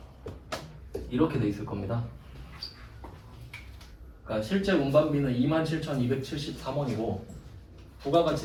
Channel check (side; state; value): both; identical; correlation 1.00